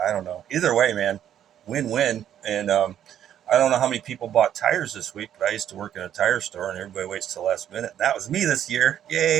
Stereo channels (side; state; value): left; quieter; 10.3 dB